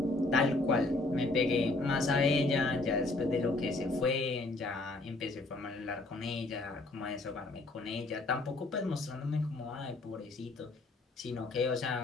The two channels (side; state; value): right; quieter; 3.0 dB